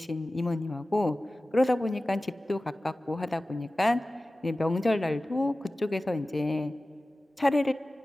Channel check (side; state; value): both; normal; correlation 0.96